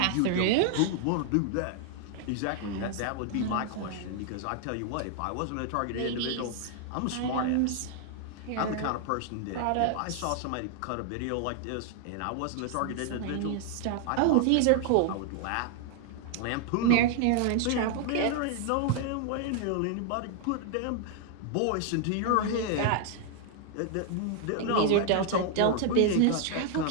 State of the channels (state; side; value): different; both; correlation 0.00